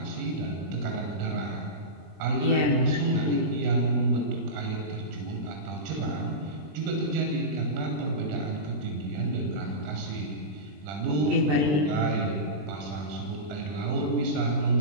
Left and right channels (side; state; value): left; late; 20 ms